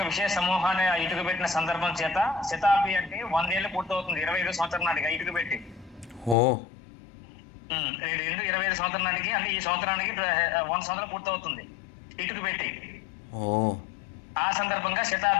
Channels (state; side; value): drops out; right; at 6.4 s